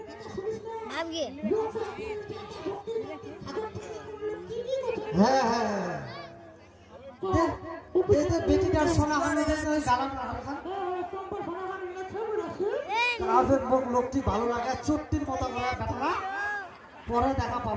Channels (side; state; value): both; identical; correlation 1.00